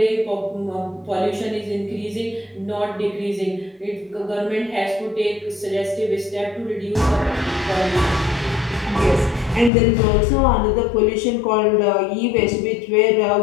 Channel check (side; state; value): right; drops out; at 9.7 s